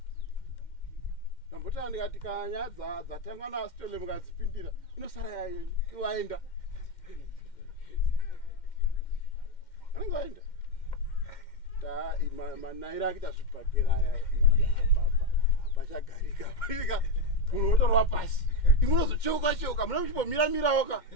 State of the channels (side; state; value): right; late; 2.1 ms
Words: Ndambota ndikati kanya dzatangwa naStole mukadzipindira inosara yayenyu waenda. Anenge waenda. Manaira akita zvibhagera aya apachagarika unotorwa pasi imunozocheuka muna muchimbomira oka